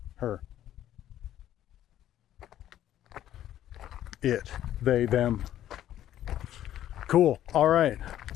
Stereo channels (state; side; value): quieter; right; 12.0 dB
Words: Her. It. They, them. Cool. All right.